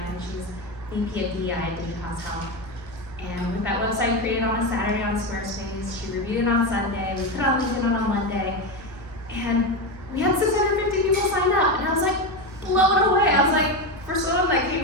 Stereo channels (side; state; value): both; normal; correlation 0.15